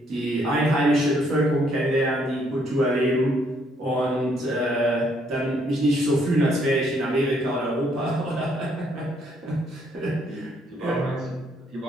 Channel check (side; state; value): both; normal; correlation 0.69